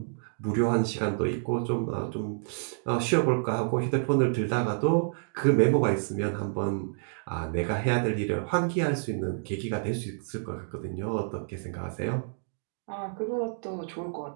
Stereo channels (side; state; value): left; silent; digital silence